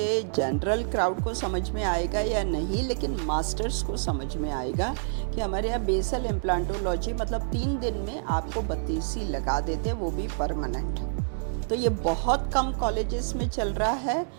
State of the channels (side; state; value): left; silent; 60 dB below the other